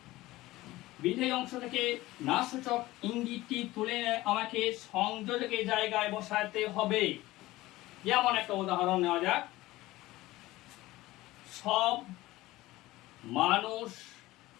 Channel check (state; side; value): quieter; right; 18.0 dB